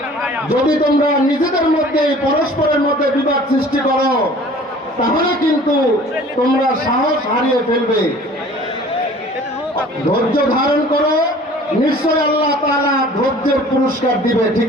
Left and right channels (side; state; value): both; normal; correlation 0.48